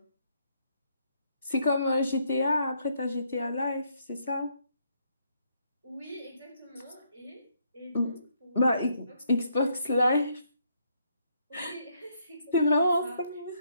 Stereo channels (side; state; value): both; inverted; correlation -0.73